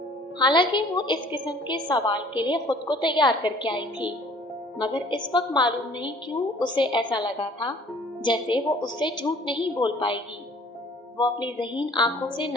حالانکہ وہ اس قسم کے سوال کے لیے خود کو تیار کر کے آئی تھی، مگر اس وقت معلوم نہیں کیوں اسے ایسا لگا تھا جیسے وہ اس سے جھوٹ نہیں بول پائے گی۔ وہ اپنی ذہین آنکھوں سے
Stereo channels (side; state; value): both; normal; correlation 0.53